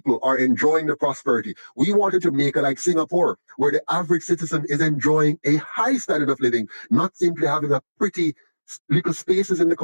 are enjoying the prosperity. We want a Jamaica like Singapore, where the average citizen is enjoying a high standard of living, not simply having a pretty little spaces in the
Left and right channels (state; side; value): inverted; both; correlation -1.00